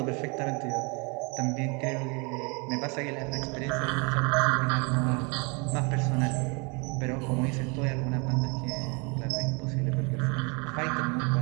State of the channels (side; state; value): left; quieter; 31.5 dB